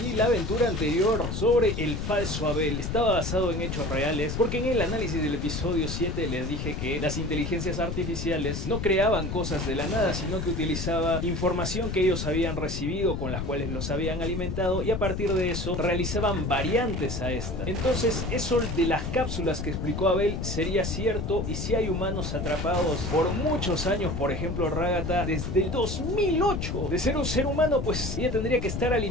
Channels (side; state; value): left; noise; rumble, 4 dB below the sound